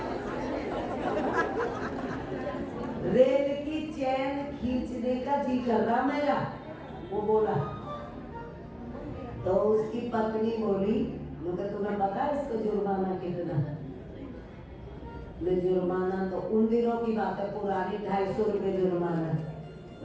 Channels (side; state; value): both; identical; correlation 1.00